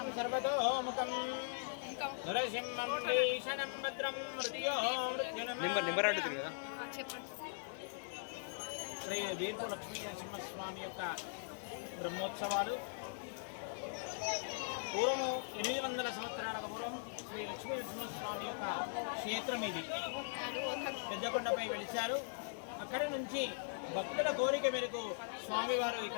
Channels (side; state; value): right; silent; digital silence